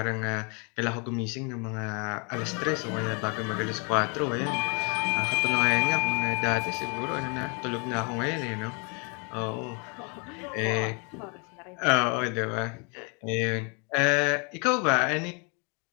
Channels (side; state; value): right; quieter; 34.2 dB